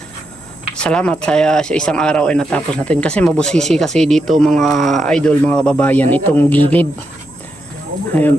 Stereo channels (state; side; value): noise; left; hum, 29 dB below the sound